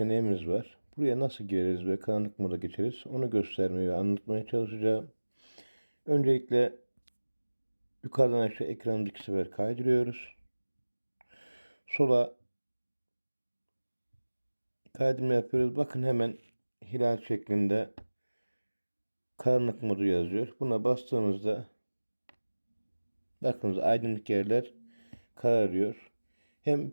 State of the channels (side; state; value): both; inverted; correlation -1.00